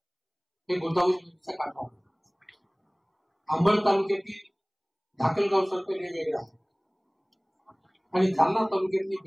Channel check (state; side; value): identical; both; correlation 1.00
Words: हे गोदावरी नदीच्या काठावर, अंबड तालुक्यातील धाकलगाव सर्कल हे वेगळं आहे आणि जालना तालुक्यातली